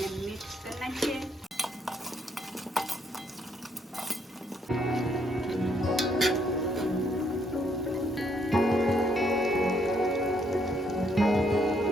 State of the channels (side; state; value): both; normal; correlation 0.71